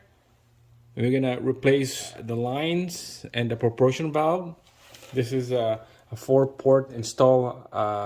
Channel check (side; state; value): both; identical; correlation 1.00